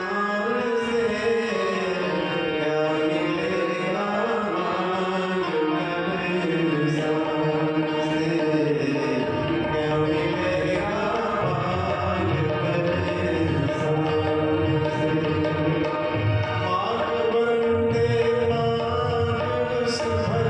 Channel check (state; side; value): identical; both; correlation 1.00